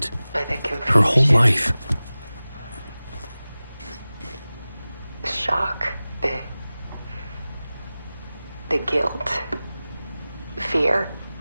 By the confusion. Her whole life. The shock. The guilt. Fear.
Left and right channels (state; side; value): inverted; both; correlation -0.97